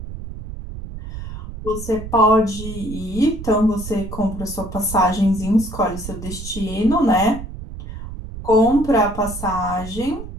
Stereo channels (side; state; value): right; noise; rumble, 10 dB below the sound